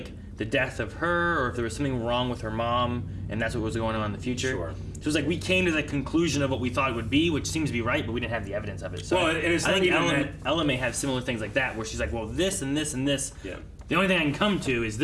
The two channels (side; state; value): both; identical; correlation 1.00